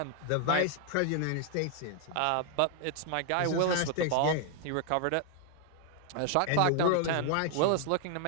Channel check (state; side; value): different; both; correlation 0.00